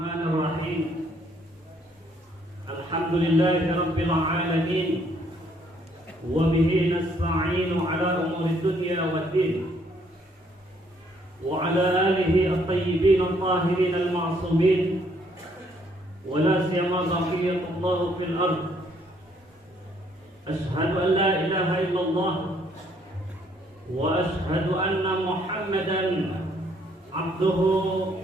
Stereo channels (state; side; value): normal; both; correlation 0.67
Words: Rabbil Alamin. Wa bihi nasta'inu ala umuri dunya waddin. Wa ala alihi at-tayyibin at-tahirin al-ma'sumin. Wa la siyama baqiyatullah fil ard. Ashhadu an la ilaha illallah. Wa ashhadu anna Muhammadan abduhu